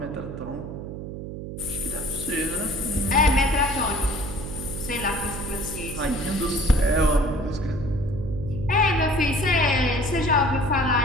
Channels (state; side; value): noise; right; hum, 8 dB below the sound